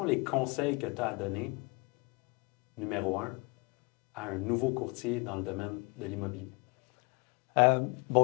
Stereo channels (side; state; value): right; quieter; 28.7 dB